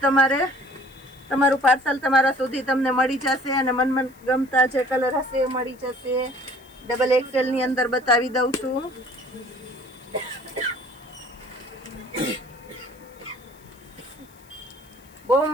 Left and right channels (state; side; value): noise; left; hiss, 28 dB below the sound